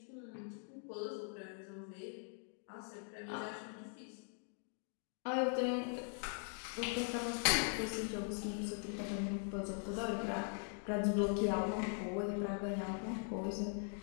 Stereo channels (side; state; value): right; silent; 50 dB below the other